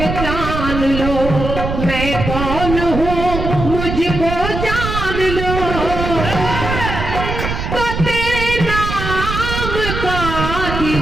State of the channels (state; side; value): noise; right; rumble, 4 dB below the sound